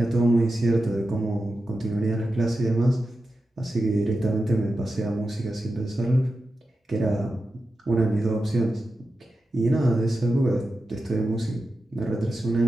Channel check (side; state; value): both; normal; correlation 0.91